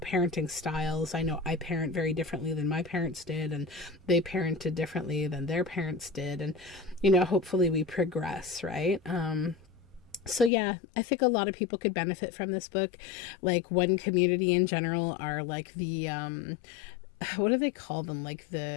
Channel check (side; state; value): right; drops out; at 10.5 s